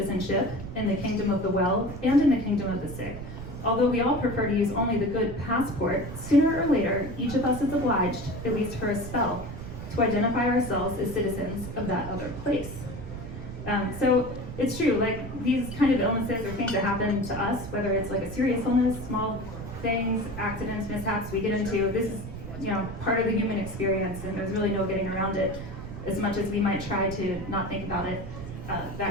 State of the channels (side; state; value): right; noise; rumble, 9 dB below the sound